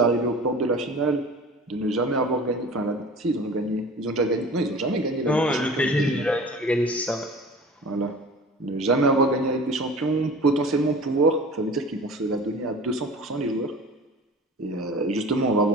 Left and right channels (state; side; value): normal; both; correlation 0.40